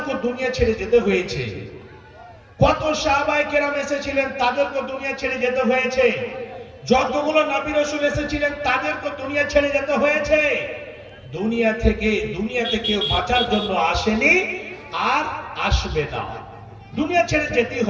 দুনিয়া ছেড়ে যেতে হয়েছে। কত সাহাবায়ে কেরাম এসেছিলেন, তাদেরকে দুনিয়া ছেড়ে যেতে হয়েছে। যতগুলো নবী রাসূল এসেছিলেন, তাদেরকে দুনিয়া ছেড়ে যেতে হয়েছে। দুনিয়াতে কেউ বাঁচার জন্য আসেনি আর আসবে না, দুনিয়া ছেড়ে যেতেই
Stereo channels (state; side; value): identical; both; correlation 1.00